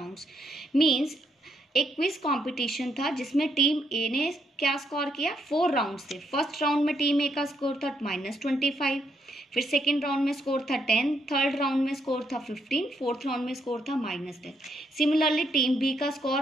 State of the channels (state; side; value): normal; both; correlation 0.77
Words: Means एक क्विज कंपटीशन था जिसमें टीम ए ने क्या स्कोर किया, 4 round थे। First round में team ए का score था -25, फिर सेकेंड राउंड में स्कोर था 10, थर्ड राउंड में स्कोर था 15, फोर्थ राउंड में स्कोर था -10। सिमिलरली टीम बी का स्कोर